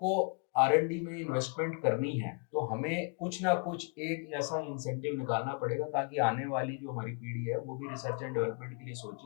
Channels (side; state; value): right; quieter; 39.0 dB